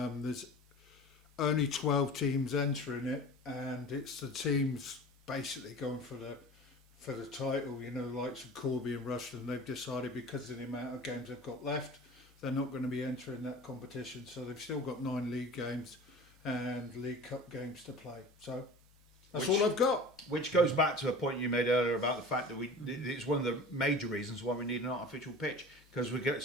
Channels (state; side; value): normal; both; correlation 0.39